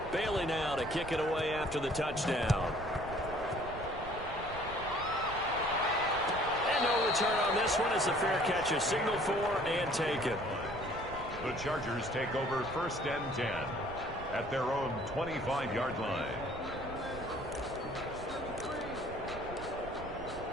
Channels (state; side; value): noise; right; rumble, 12 dB below the sound